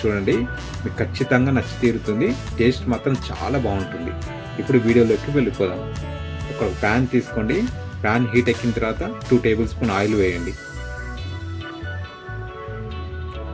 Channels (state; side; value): identical; both; correlation 1.00